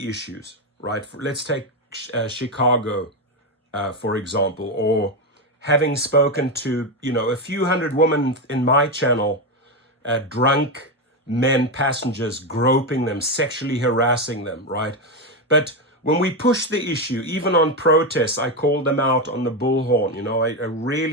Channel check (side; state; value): both; normal; correlation 0.10